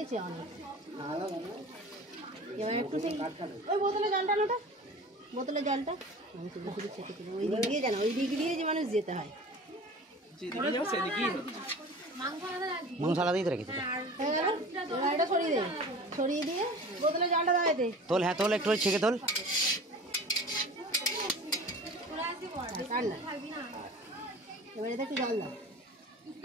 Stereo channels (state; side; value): normal; both; correlation 0.40